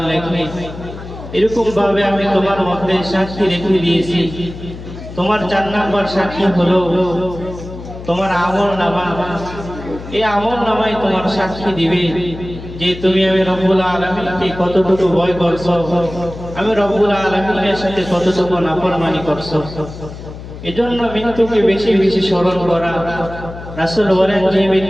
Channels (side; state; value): left; noise; hum, 13 dB below the sound